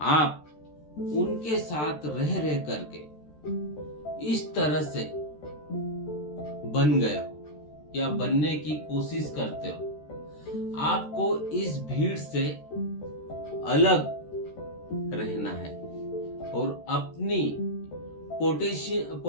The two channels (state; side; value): late; right; 13 ms